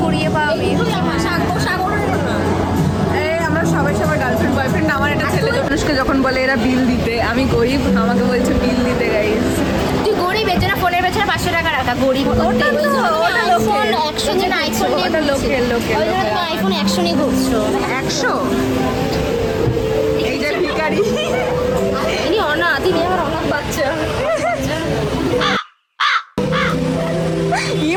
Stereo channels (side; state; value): both; identical; correlation 1.00